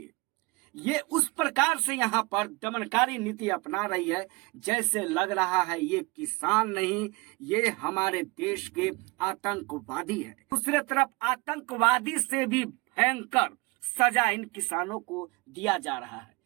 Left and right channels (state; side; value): quieter; left; 25.1 dB